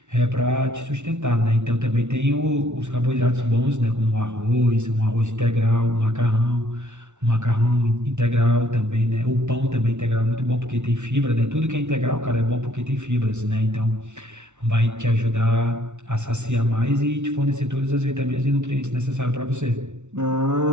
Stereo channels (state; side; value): late; left; 0.83 ms